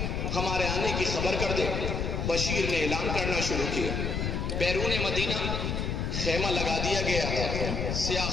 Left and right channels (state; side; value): noise; left; rumble, 1 dB below the sound